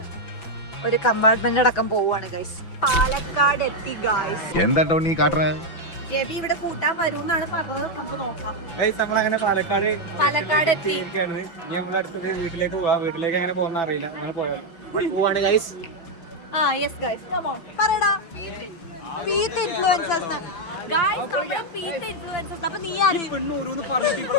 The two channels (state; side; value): late; right; 5.9 ms